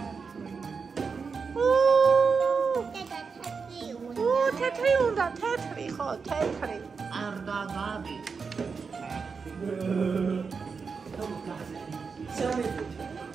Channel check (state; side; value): quieter; left; 5.3 dB